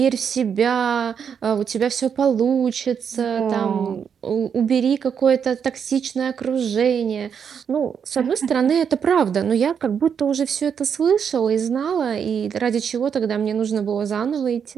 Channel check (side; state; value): left; quieter; 7.3 dB